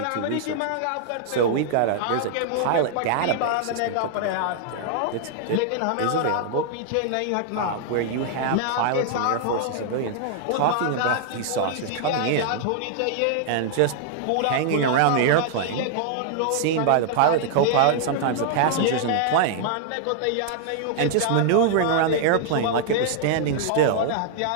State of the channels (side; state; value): both; different; correlation -0.01